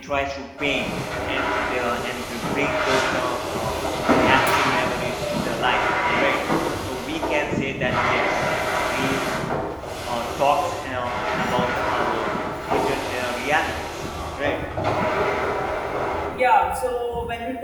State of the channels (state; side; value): identical; both; correlation 1.00